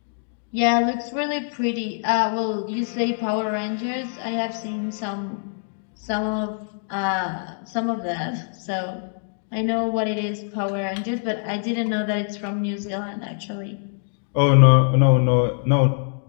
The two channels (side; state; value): right; silent; digital silence